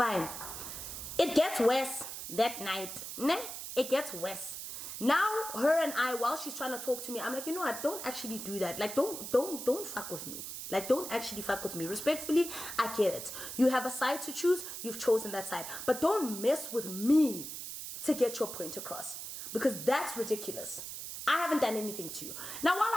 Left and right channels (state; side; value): noise; right; hiss, 8 dB below the sound